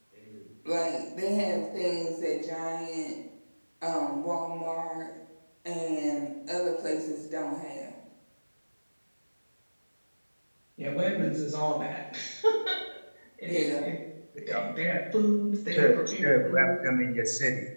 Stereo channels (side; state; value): both; inverted; correlation -1.00